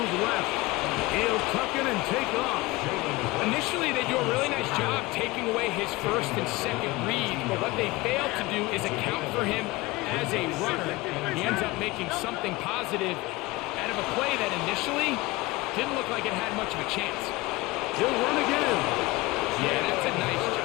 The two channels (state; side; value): quieter; right; 21.3 dB